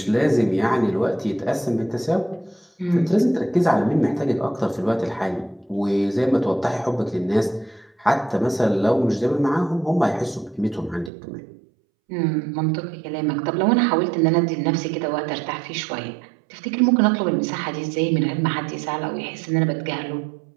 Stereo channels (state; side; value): drops out; left; at 11.1 s